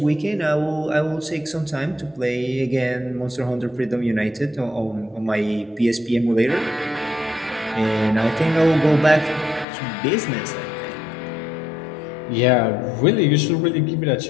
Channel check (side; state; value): right; drops out; at 9.7 s